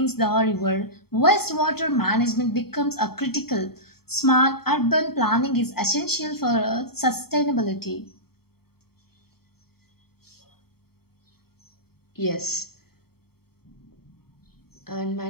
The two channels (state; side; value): late; right; 0.95 ms